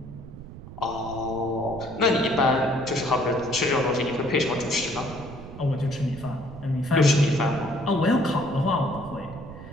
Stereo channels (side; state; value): right; noise; rumble, 14 dB below the sound